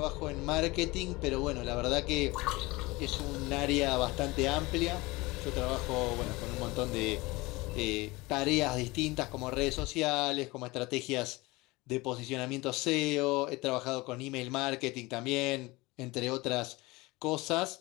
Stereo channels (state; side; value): quieter; right; 22.3 dB